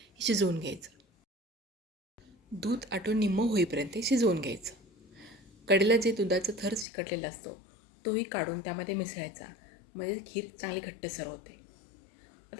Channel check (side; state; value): right; drops out; at 6.9 s